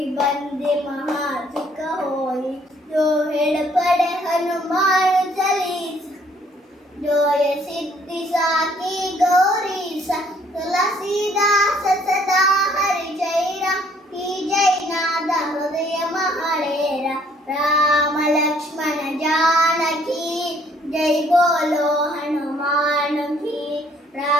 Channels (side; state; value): both; normal; correlation 0.63